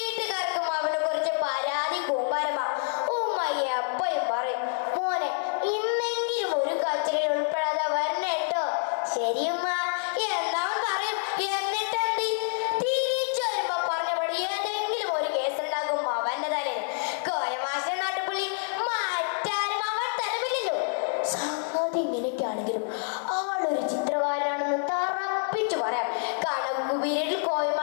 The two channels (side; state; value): right; silent; 60 dB below the other